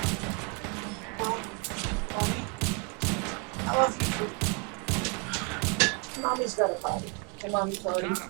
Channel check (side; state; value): left; quieter; 34.5 dB